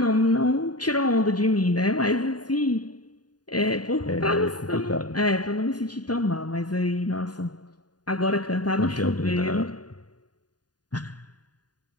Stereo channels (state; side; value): late; right; 0.69 ms